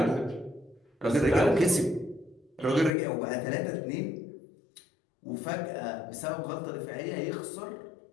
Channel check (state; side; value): drops out; right; at 2.9 s